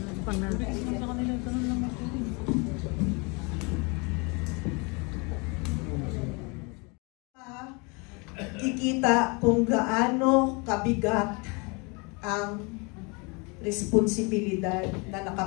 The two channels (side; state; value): right; quieter; 30.6 dB